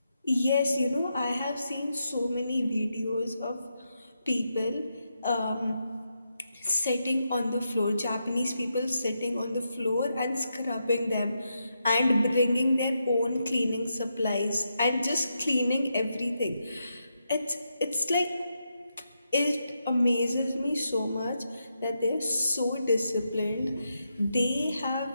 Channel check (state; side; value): inverted; both; correlation -0.84